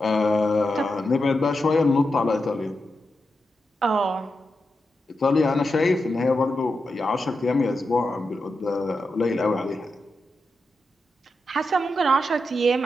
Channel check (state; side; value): normal; both; correlation 0.88